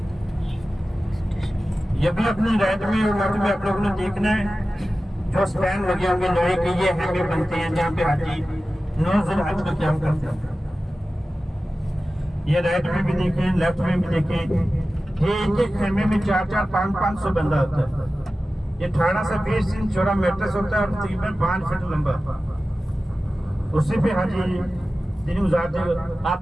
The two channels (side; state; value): both; normal; correlation 0.95